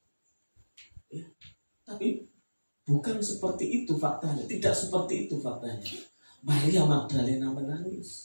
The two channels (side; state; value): both; inverted; correlation -1.00